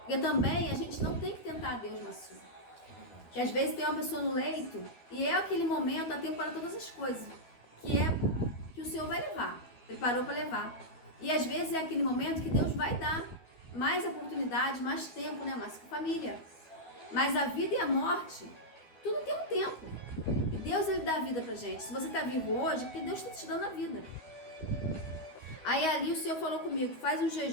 também a gente não tem que tentar a Deus, Marcinho. Que às vezes tem uma pessoa no leito e é aquele momento, há tempo para todas as coisas. Que é que o Senhor vai levar. Ele parou para levar. E às vezes é aquele momento que Deus vai dar mais oportunidade, mais tempo, né? Mais que família. Mas a vida e a morte, tudo tem um tempo. Deus, Ele dá a vida pra gente. Se você tá vivo hoje, é porque Deus está te dando a vida. Aí ali o Senhor falou comigo: faz um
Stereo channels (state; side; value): late; right; 13 ms